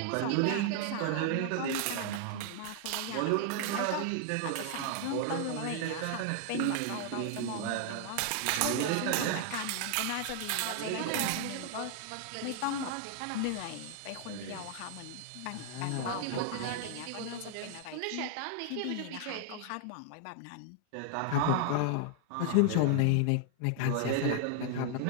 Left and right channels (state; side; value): different; both; correlation 0.00